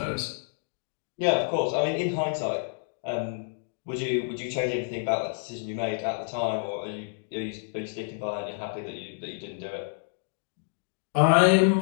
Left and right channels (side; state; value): right; silent; digital silence